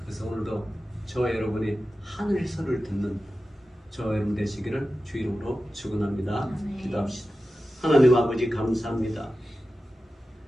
그래서 오늘도 저와 여러분이 하늘의 소리를 듣는 저와 여러분 되시기를 주 이름으로 축원합니다. 네. 기도합시다. 하나님 아버지 감사합니다.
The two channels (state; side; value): normal; both; correlation 0.94